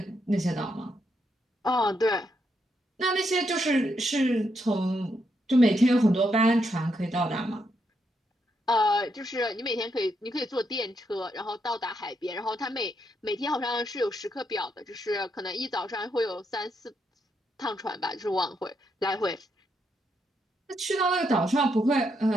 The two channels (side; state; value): both; normal; correlation 0.79